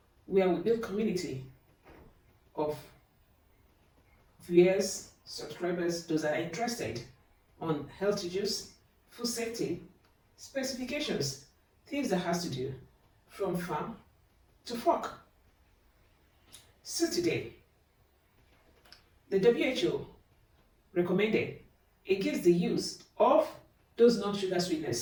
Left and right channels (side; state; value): both; identical; correlation 1.00